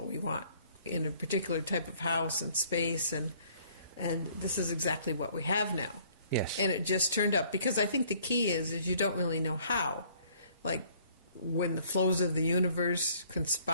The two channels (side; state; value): both; inverted; correlation -0.60